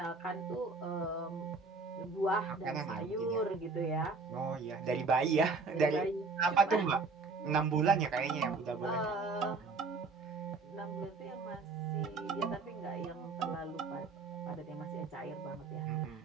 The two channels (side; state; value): left; quieter; 4.1 dB